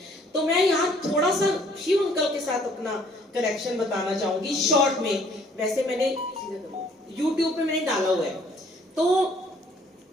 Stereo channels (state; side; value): normal; both; correlation 0.60